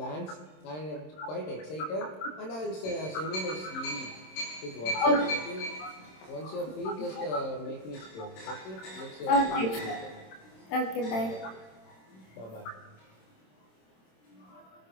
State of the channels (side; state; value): right; late; 26 ms